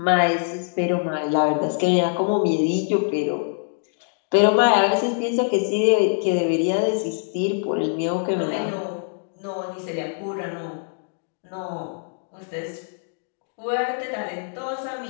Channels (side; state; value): right; silent; 63 dB below the other